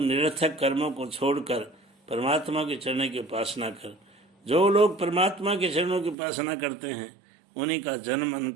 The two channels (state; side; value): drops out; left; at 6.2 s